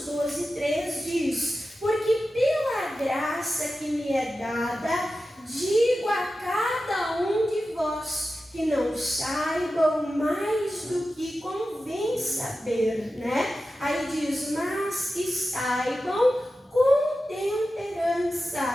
12, 3 diz: porque pela graça que me é dada, digo a cada um de vós, que não saibam mais do que convém saber, né? Aí diz, mas que saibam com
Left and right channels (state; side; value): normal; both; correlation 0.93